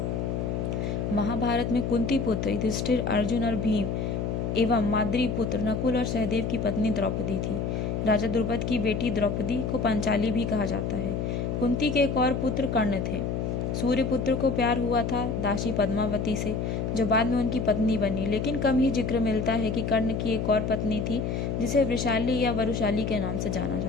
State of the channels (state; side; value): noise; left; hum, 1 dB below the sound